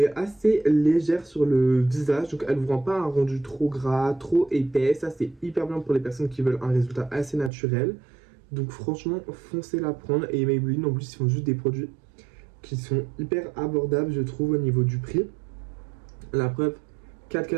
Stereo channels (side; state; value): left; drops out; at 7.5 s